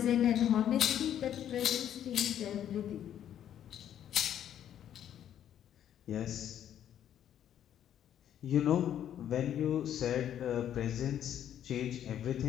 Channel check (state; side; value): quieter; right; 10.3 dB